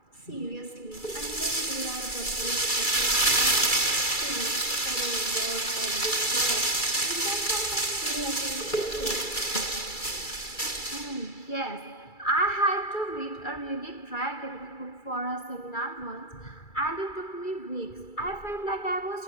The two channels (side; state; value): right; late; 2.3 ms